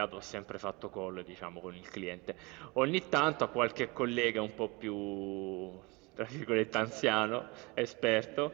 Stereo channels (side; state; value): left; quieter; 26.3 dB